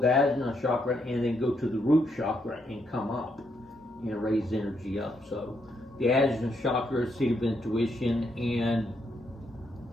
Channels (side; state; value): both; normal; correlation 0.77